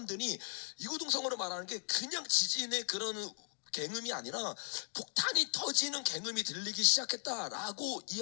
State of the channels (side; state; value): right; silent; 53 dB below the other